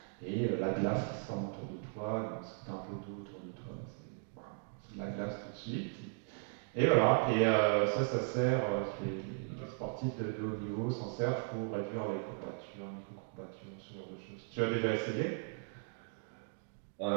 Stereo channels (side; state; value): left; silent; 53 dB below the other